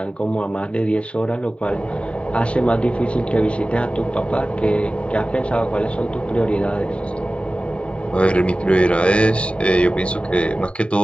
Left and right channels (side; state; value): right; late; 0.060 ms